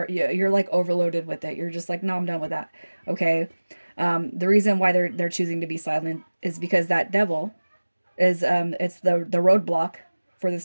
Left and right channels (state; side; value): inverted; both; correlation -1.00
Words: like overloaded with it. You're just like, no, I'm done with that. Okay. The reason why they're choosing to be silent is because that devil is it's the roadblock for